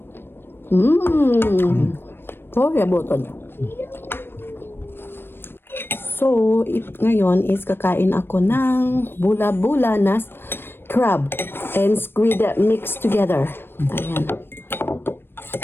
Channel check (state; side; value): late; right; 0.10 ms